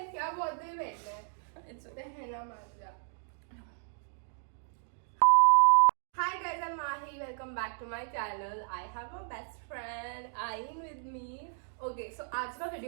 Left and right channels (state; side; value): silent; left; digital silence